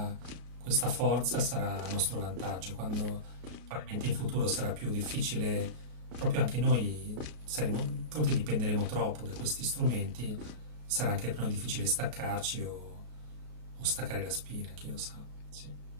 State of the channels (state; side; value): late; left; 33 ms